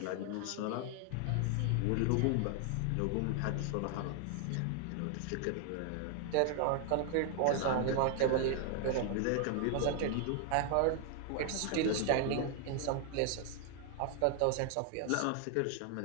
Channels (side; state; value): both; different; correlation 0.00